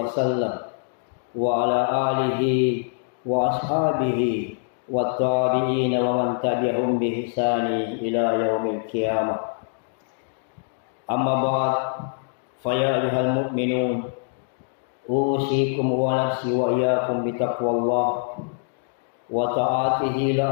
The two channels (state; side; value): silent; right; digital silence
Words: وسلم وعلى آله وأصحابه والتابعين ومن تبعهم بإحسان إلى يوم القيامة أما بعد فيا أيها المؤمنون أوصيكم ونفسي وإياكم بتقوى الله وطاعته